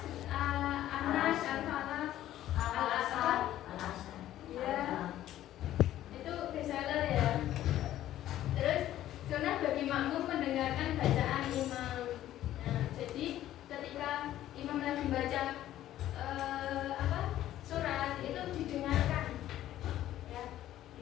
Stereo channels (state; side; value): quieter; right; 13.1 dB